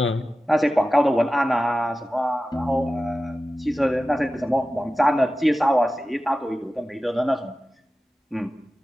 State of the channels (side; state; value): both; normal; correlation 0.94